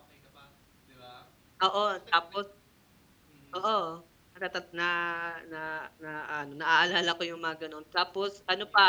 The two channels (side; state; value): both; identical; correlation 1.00